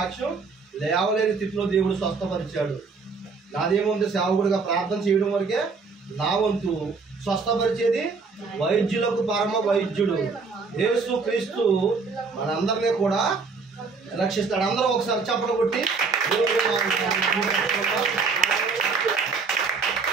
లేవలేని స్థితిలో దేవుడు స్వస్థపరిచాడు. నాదేముంది, సేవకుడిగా ప్రార్థన చేయడం వరకే నా వంతు. స్వస్థపరిచేది వైద్యులకు పరమ వైద్యుడు యేసు క్రీస్తు మనందరినీ కూడా రక్షిస్తాడు. అందరూ ఒకసారి చప్పట్లు కొట్టి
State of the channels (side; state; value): left; quieter; 4.7 dB